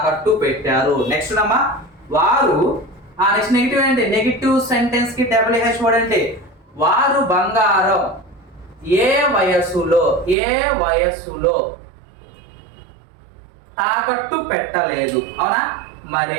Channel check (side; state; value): left; drops out; at 10.4 s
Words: పెట్టారు. నెక్స్ట్ అమ్మా, వారు నెక్స్ట్ నెగిటివ్ ఏంటి, నెగిటివ్ సెంటెన్స్ కి WH వర్డ్ అంటే వారు బంగారం ఏ వయసులో తాకట్టు పెట్టలేదు. అవునా,